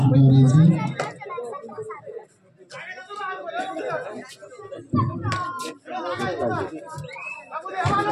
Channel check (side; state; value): both; identical; correlation 1.00